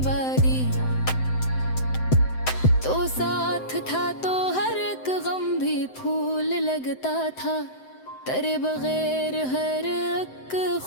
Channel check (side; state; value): right; late; 7.8 ms